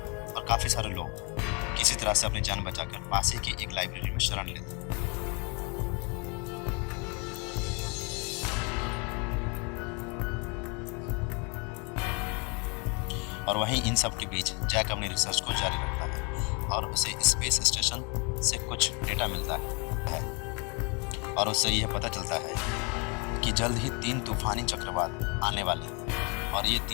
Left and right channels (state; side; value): quieter; right; 32.6 dB